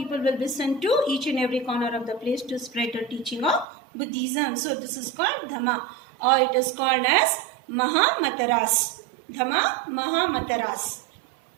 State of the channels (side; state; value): left; drops out; at 3.7 s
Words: will be sent to each and every corner of the place to spread the teaching of Buddhism. So this is called Dhamma, or it is called as Mahamataras. Dhamma, Mahamataras.